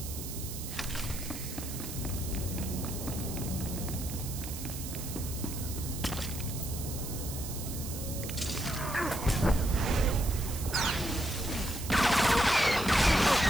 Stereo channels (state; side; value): noise; right; hiss, 9 dB below the sound